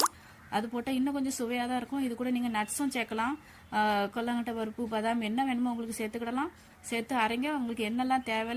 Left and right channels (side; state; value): both; identical; correlation 1.00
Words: அது போட்டால் இன்னும் கொஞ்சம் சுவையாக தான் இருக்கும். இது கூட நீங்கள் நட்ஸும் சேர்க்கலாம். கொல்லங்கட்டை பருப்பு, பாதாம், என்ன வேணுமோ உங்களுக்கு சேர்த்துக்கிடலாம். சேர்த்து அரைங்க. உங்களுக்கு என்னெல்லாம்